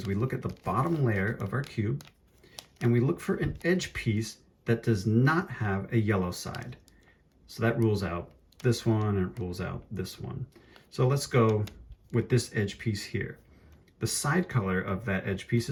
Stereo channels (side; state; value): both; identical; correlation 1.00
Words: we look at the bottom layer of our cube and we look for an edge piece that does not have a yellow side. So that rules out this one and it rules out this one. So let's go with this edge piece here. The side color of that edge piece